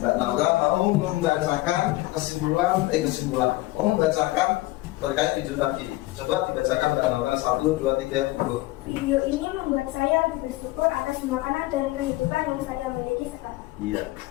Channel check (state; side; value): quieter; right; 19.1 dB